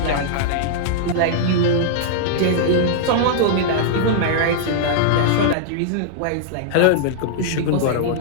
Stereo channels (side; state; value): both; different; correlation -0.01